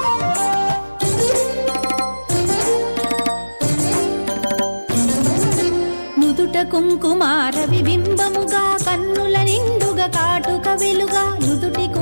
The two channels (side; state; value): both; inverted; correlation -1.00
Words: కుంకుమార విబింబముగా కన్నుల నిండుగా కాటుక వెలుగా నుదుటి